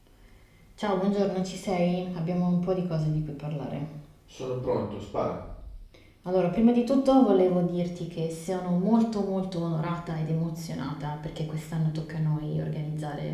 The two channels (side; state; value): both; identical; correlation 1.00